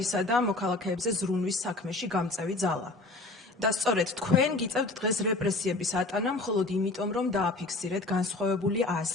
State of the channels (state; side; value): quieter; right; 3.1 dB